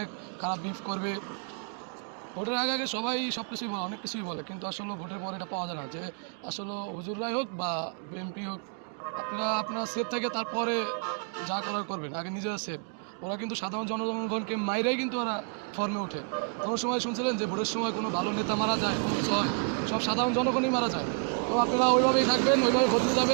খারাপ বিহেভ করবে। ভোটের আগে আগে সবাই সব কিছুই বলে, অনেক কিছুই বলে, কিন্তু আসলে ভোটের পরে এটা পাওয়া যায় না যে আসলে হুজুররাই হোক বা বিএনপি হোক, আপনারা সেফ থাকে তারপরে যা করার করবেন, আগে নিজেরা সেফ। ওরা কিন্তু সাধারণ জনগণকে মাইরাই কিন্তু ওরা ফর্মে ওঠে। কোনো সময় শুনছিলেন যে ভোটের সময় কোনো ভালো নেতা মারা যায়, কোনো কিছু হয়, সব সাধারণ জনগণই মারা যায়। তো আপনারা ওইভাবেই থাকবেন, ওইভাবে ভোট দিতে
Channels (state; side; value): quieter; left; 39.4 dB